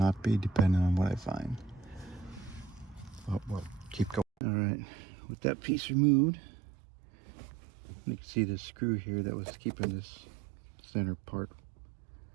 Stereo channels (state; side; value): drops out; left; at 4.2 s